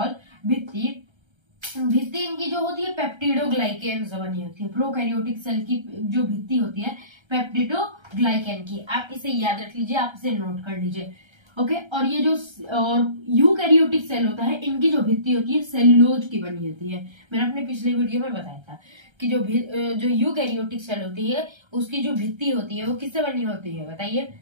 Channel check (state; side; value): late; left; 1.3 ms